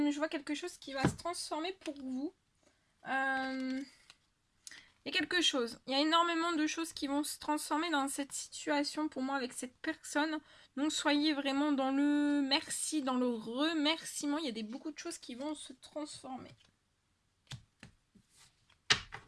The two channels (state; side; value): identical; both; correlation 1.00